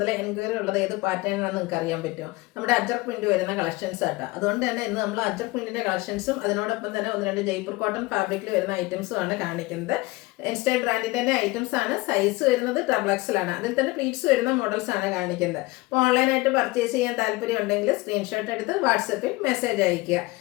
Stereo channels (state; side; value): quieter; right; 22.2 dB